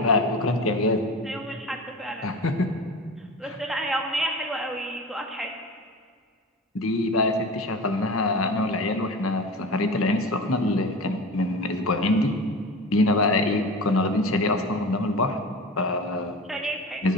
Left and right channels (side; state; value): both; normal; correlation 0.32